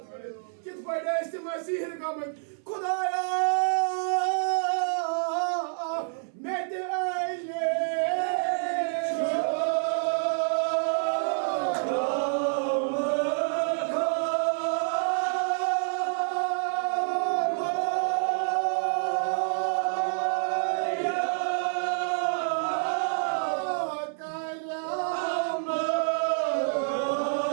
करित किस पड़े इस मसीह का खुदाया मैं ते आइले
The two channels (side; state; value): left; silent; 59 dB below the other